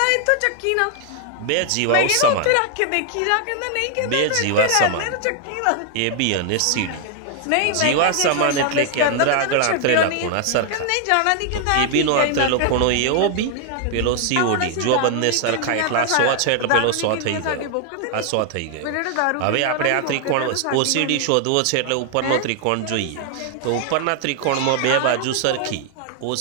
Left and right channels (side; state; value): both; different; correlation 0.00